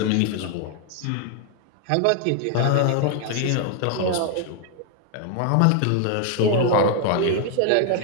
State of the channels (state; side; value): different; both; correlation 0.00